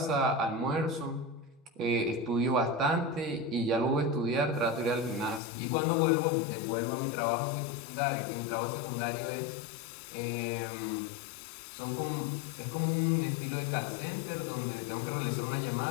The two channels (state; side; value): drops out; right; at 5.4 s